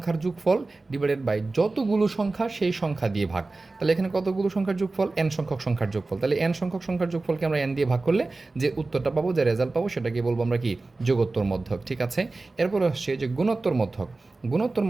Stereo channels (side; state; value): left; quieter; 3.4 dB